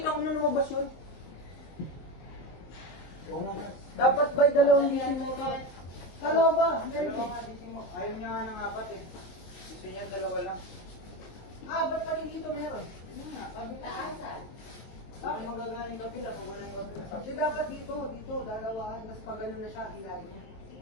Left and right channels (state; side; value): late; right; 23 ms